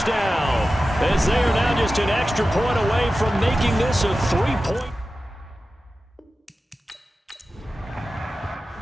As they are now just an extra point away from making this a 3-point.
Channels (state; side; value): normal; both; correlation 0.94